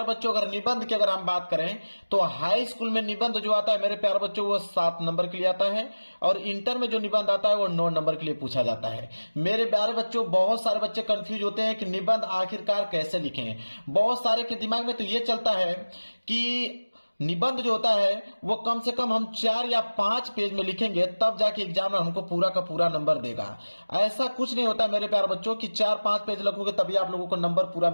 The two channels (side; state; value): both; inverted; correlation -1.00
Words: बच्चों, अगर निबंध की अगर हम बात करें तो हाई स्कूल में निबंध जो आता है मेरे प्यार बच्चों वो 7 नंबर के लिए आता है और इंटर में जो निबंध आता है वो 9 नंबर के लिए पूछा जाता है। मेरे प्यारे बच्चों, बहुत सारे बच्चे कंफ्यूज होते हैं कि निबंध आखिरकार कैसे लिखें। बहुत सारे के दिमाग में तो ये चलता है कि निबंध जो होता है वो कम से कम हम 4 या 5 पेज में लिखेंगे तब जाके एग्जामिनर हमको पूरा का पूरा नंबर देगा। ऐसा कुछ नहीं होता मेरे प्यारे बच्चों कि 4-5 पेज लिखोगे तभी आप लोगों को नंबर पूरा